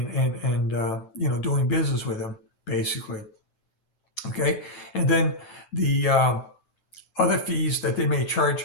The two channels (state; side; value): late; right; 10 ms